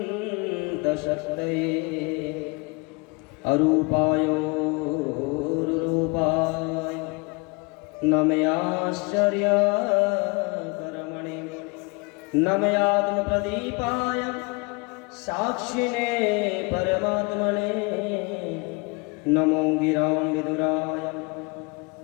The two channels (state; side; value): quieter; right; 28.9 dB